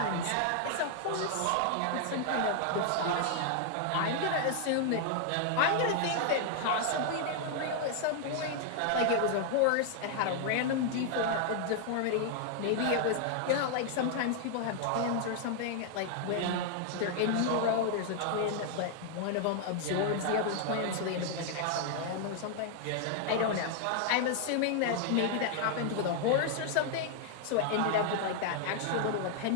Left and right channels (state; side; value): different; both; correlation 0.00